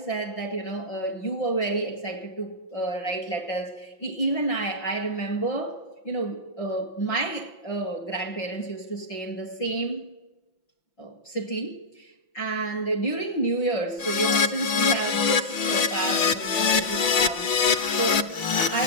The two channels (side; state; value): right; late; 5.8 ms